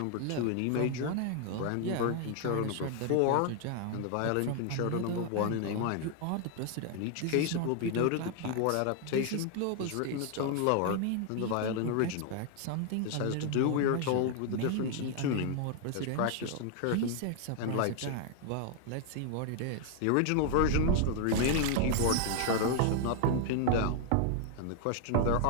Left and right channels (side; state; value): both; different; correlation 0.00